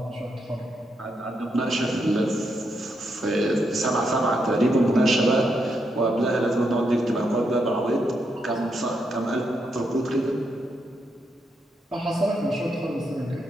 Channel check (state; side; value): normal; both; correlation 0.81